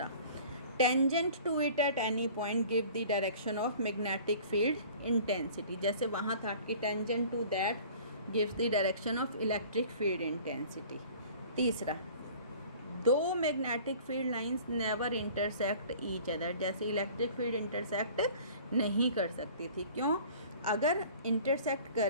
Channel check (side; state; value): both; inverted; correlation -0.47